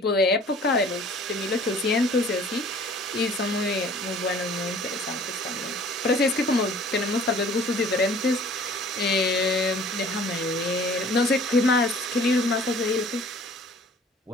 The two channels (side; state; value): both; normal; correlation 0.51